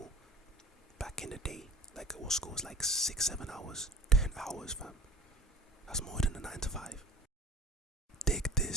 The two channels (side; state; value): both; normal; correlation 0.42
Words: Back in the day, like our school was like 6-7 hours. 10 hours, fam. That's more than a 9 to 5. Dig